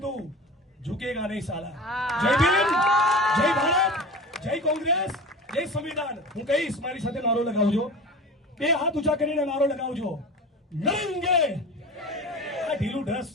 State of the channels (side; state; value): both; normal; correlation 0.34